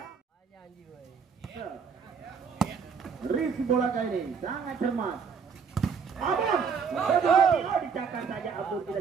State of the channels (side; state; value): left; quieter; 6.1 dB